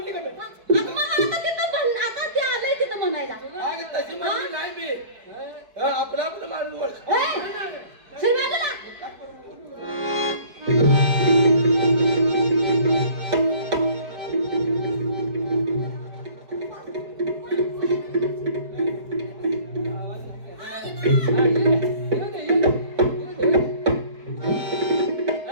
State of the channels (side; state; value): left; late; 4.7 ms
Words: का मी? आता मग आता तिथं आता ते आलंय तिथं म्हणायला अगं तशी म्हणली नाही मी आपलं माणूस ओळख ए, सर बाजूला.